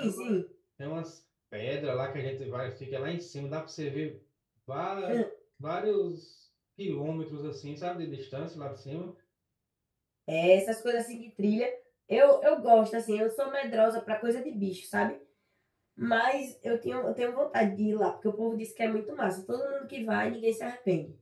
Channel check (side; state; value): both; identical; correlation 1.00